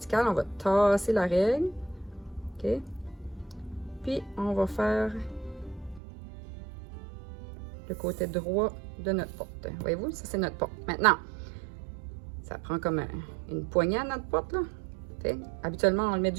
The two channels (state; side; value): drops out; left; at 6.0 s